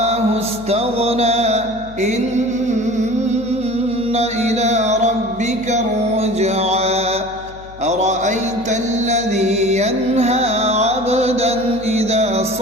استغنى. إن إلى ربك الرجعى. أرأيت الذي ينهى عبدا إذا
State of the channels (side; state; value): left; noise; hum, 18 dB below the sound